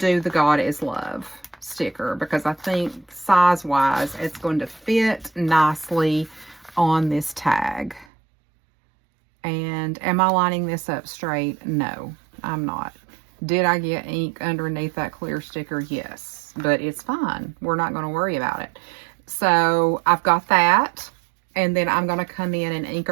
the God is Love sticker because I think size-wise it's going to fit nicely on this tag. And am I lining this up straight? No. I'm not. Did I get ink underneath that clear sticker? Yes, but it's fine. We're not going to worry about it. So I've got that, and then I'm going to come in and ink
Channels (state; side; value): drops out; left; at 8.1 s